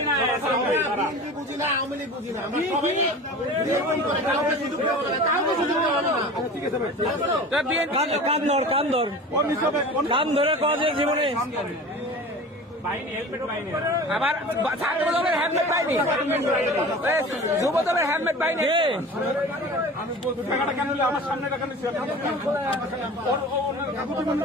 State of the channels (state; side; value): normal; both; correlation 0.37